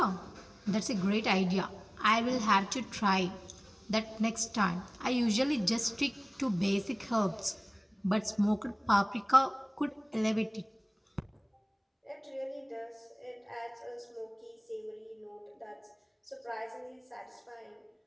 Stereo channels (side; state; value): both; identical; correlation 1.00